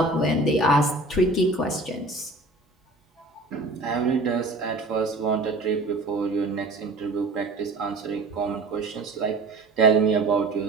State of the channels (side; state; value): left; quieter; 3.0 dB